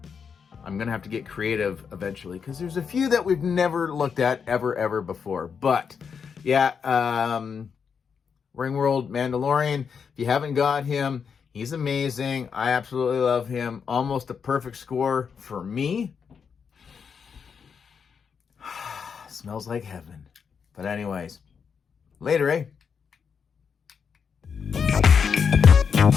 I'm gonna have to get creative eventually, because there's a few that we've never looked at ever before. But Ring World Mandalorian, if you haven't got him, he's amazing. I absolutely love him. Almost a perfect score for me. Smells like heaven. But anyways, later, eh?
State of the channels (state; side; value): quieter; right; 6.4 dB